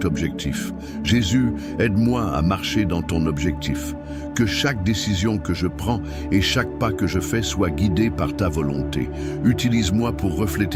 objectif. Jésus, aide-moi à marcher dans ton objectif. Que chaque décision que je prends et chaque pas que je fais soit guidé par ta volonté. Utilise-moi pour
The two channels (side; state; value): both; identical; correlation 1.00